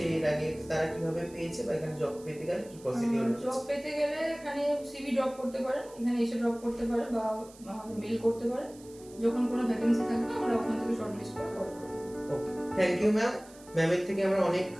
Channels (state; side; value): noise; right; hiss, 23 dB below the sound